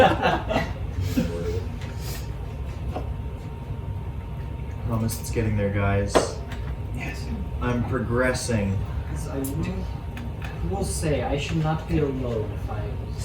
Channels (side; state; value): both; identical; correlation 1.00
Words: Promise it's getting there, guys. Yes. I'm progressing. I will say, I should not be alone if I